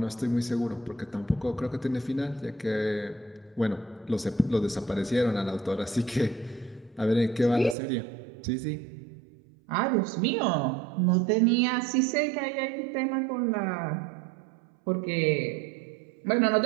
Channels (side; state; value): left; drops out; at 7.8 s